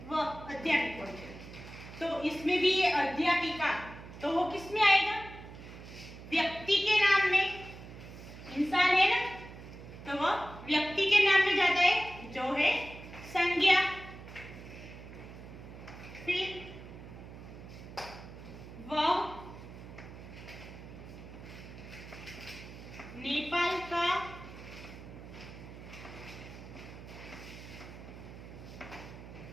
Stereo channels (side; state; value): right; noise; hum, 14 dB below the sound